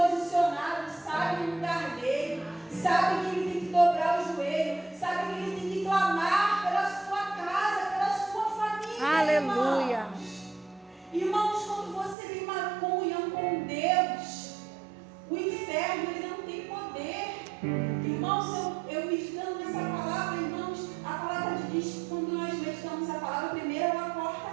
sabe o lugar dele, sabe que ele tem que dobrar o joelho, sabe que ele tem que clamar pela sua casa, pela sua família. Aleluia. Irmãos, quando você tem uma comunhão com Deus, o inferno ele não tem poder. Irmãos, eu meditando nessa palavra, irmãos, a palavra diz que quando nós meditamos a palavra, primeiro ela corta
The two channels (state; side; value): drops out; left; at 12.2 s